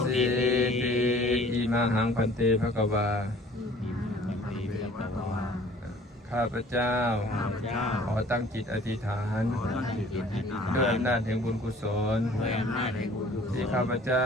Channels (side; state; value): both; normal; correlation 0.52